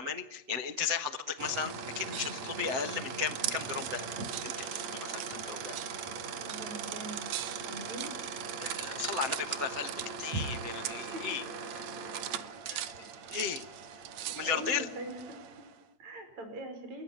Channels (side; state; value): left; late; 8.8 ms